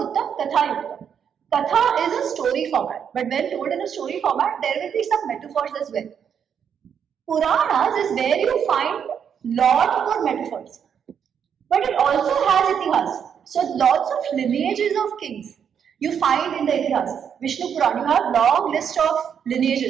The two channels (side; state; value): left; quieter; 7.8 dB